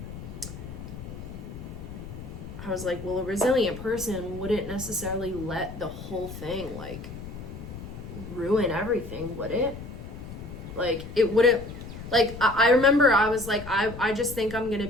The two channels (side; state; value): left; noise; rumble, 11 dB below the sound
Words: I was like, well, a resilient person wouldn't necessarily let the whole thing like ruin everything, would it? Like, it wouldn't. Like, I remember I was like, I just think I'm gonna